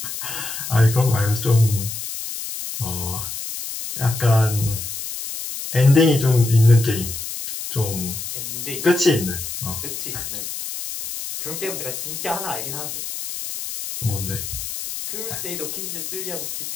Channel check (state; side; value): noise; left; hiss, 7 dB below the sound